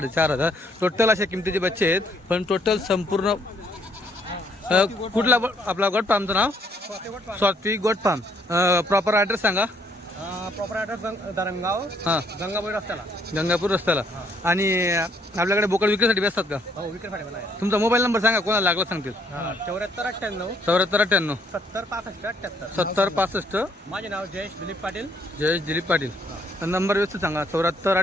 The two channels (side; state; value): both; normal; correlation 0.68